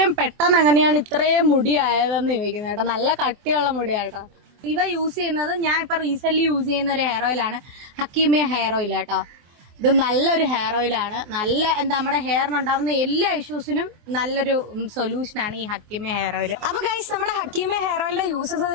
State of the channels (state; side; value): late; left; 24 ms